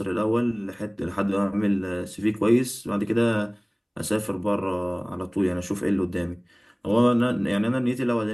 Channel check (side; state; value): both; identical; correlation 1.00